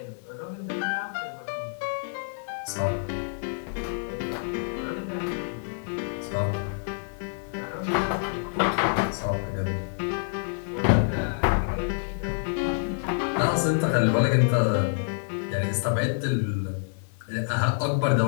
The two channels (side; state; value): right; silent; 60 dB below the other